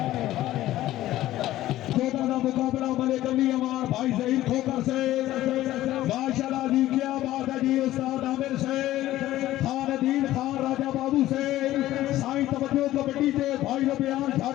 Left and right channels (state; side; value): quieter; right; 14.8 dB